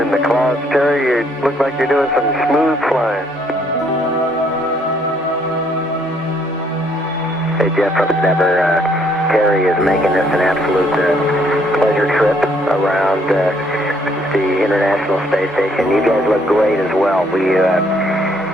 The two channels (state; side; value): normal; both; correlation 0.67